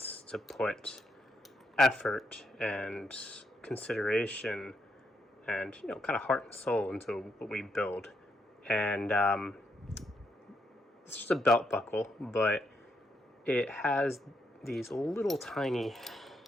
to put effort and consideration and kind of heart and soul into what we build. And it's just a belt buckle, but it has these little tiny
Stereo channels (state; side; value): normal; both; correlation 0.78